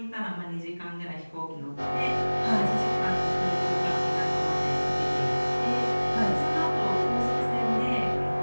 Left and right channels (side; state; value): both; inverted; correlation -1.00